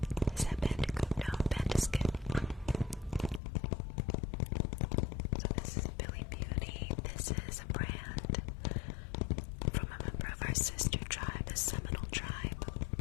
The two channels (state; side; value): drops out; right; at 3.4 s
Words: Is that Bandicoot? No, Bandiscuit. So this is Billy Beauty. This is a brand from a member of our sister tribe, the Seminole tribe.